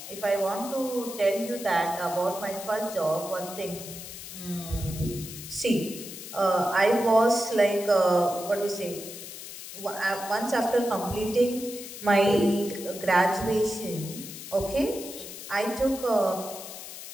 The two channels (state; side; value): noise; left; hiss, 11 dB below the sound